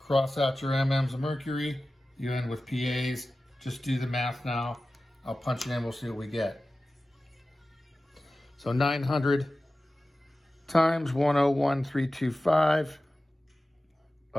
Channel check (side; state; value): both; normal; correlation 0.95